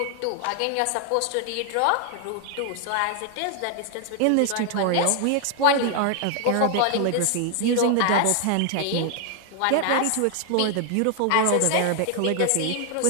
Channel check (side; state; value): both; different; correlation 0.00